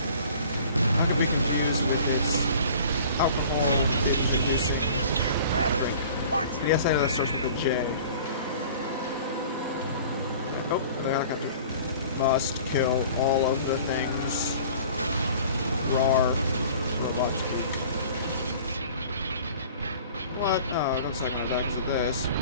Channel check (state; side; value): inverted; both; correlation -0.46